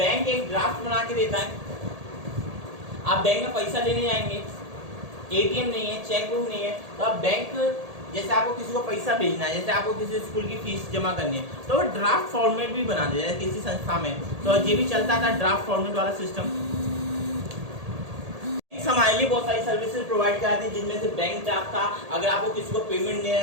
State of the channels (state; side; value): late; left; 1.8 ms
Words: एक ड्राफ्ट बना के देता है। आप बैंक में पैसा लेने जाएंगे, एटीएम नहीं है, चेक बुक नहीं है, तो आप बैंक, जैसे आपको किसी को पैसा भेजना है, जैसे आपको किसी स्कूल की फीस जमा करनी है, तो वो ड्राफ्ट फॉर्मेट भी बना दिया है किसी संस्था में, तो ये भी चलता था ड्राफ्ट फॉर्मेट वाला सिस्टम। हमारे लिए बहुत सारी सर्विसेज प्रोवाइड कराती है, जिनमें से बैंक ड्राफ्ट था। अगर आपको किसी को पेमेंट देना